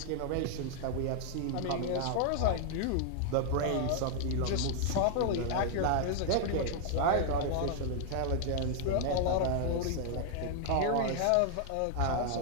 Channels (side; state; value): both; different; correlation 0.00